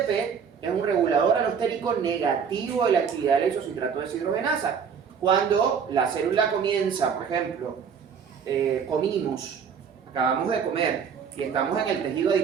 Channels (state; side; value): quieter; left; 6.8 dB